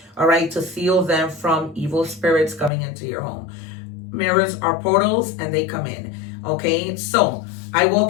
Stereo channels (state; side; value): drops out; right; at 2.7 s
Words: all right, to seal them from evil spirits coming into your home. Mirrors are portals and they come in, okay? So I